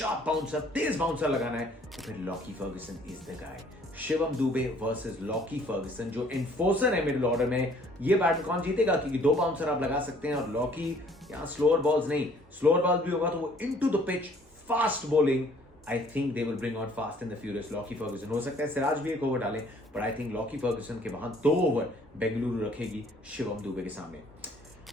बाउंसर, तेज बाउंसर लगाना है, तो फिर Lockie Ferguson is the guy. Shivam Dube versus Lockie Ferguson, जो एनफोर्सर है मिडिल ऑर्डर में। ये बैटल कौन जीतेगा? क्योंकि 2 बाउंसर आप लगा सकते हैं और लॉकी यहां स्लोअर बॉल्स नहीं, स्लोअर बॉल भी होगा तो वो into the pitch fast bowling. I think they will bring on fast and the furious Lockie Ferguson. हो सकता है सिराज भी एक ओवर डाले, but I think Lockie Ferguson के वहां 2 ओवर बेंगलुरु रखेगी शिवम दुबे के सामने।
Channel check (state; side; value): normal; both; correlation 0.58